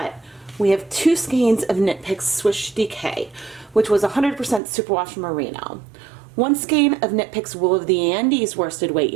we have 2 skeins of KnitPicks Swish DK, which was 100% superwash merino. 1 skein of KnitPicks Wool of the Andes worsted weight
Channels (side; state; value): left; drops out; at 4.6 s